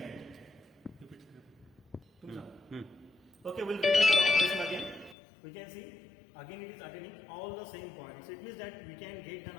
Okay, we'll repeat the operation again. We can see again it is attending all the same points. So it means that we can get done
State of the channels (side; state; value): right; drops out; at 5.2 s